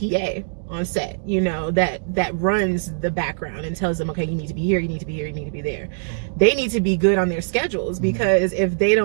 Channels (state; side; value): silent; left; digital silence